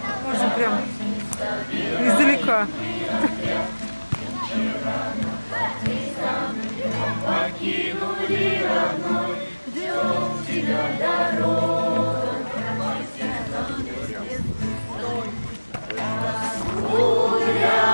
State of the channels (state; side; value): inverted; both; correlation -1.00